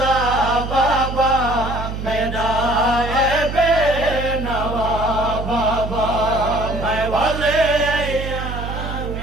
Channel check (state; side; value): noise; right; hum, 6 dB below the sound